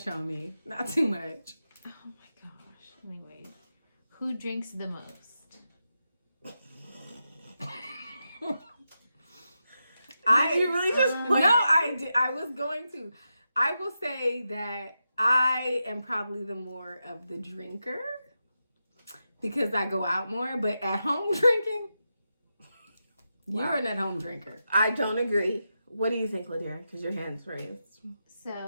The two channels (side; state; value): both; inverted; correlation -0.88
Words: on me. Not too much. Oh my gosh. Anyway, who drinks the most? Did you really just put No, I did. I was going to. I will say that I am probably the more of the drinker because I go out more. But at home drinking, you're Wow. an at-home drinker. I don't agree. What do you think, Ladira? Because your hand's raised.